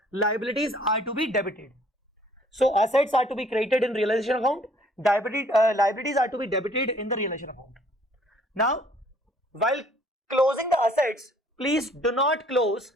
Liabilities are to be debited. So assets are to be credited in realization account. Liabilities are to be debited in the realization account. Now, while closing the assets, please do not close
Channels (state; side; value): normal; both; correlation 0.59